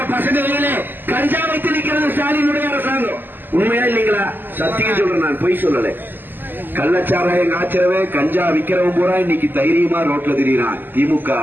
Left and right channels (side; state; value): left; late; 0.091 ms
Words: பசங்களிலே கஞ்சா வைத்து நிற்கிறது ஸ்டாலினுடைய அரசாங்கம். உண்மையா இல்லைங்களா? சத்தியம் சொல்றேன், நான் பொய் சொல்லல. கள்ளச்சாராயம் காய்ச்சறவே கஞ்சா விக்கிறவன் பூரா இன்னைக்கு தைரியமா ரோட்ல திரியிறான். திமுக